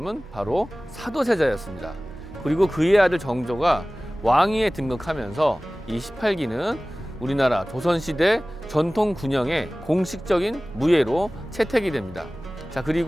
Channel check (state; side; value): normal; both; correlation 0.98